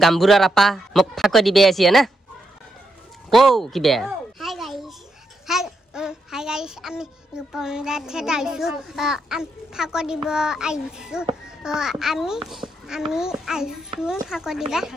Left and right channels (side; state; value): both; normal; correlation 0.82